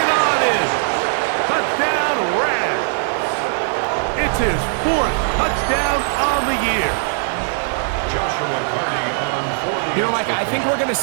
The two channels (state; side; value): silent; left; 66 dB below the other